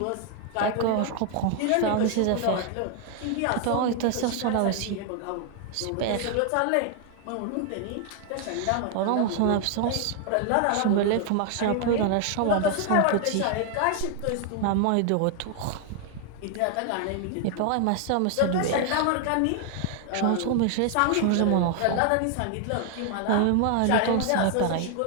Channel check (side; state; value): both; different; correlation 0.00